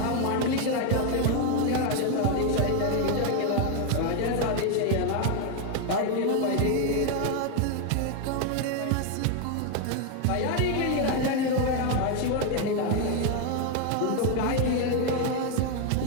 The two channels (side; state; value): both; different; correlation 0.01